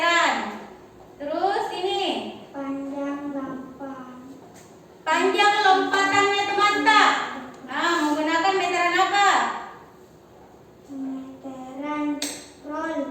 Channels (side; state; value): both; identical; correlation 1.00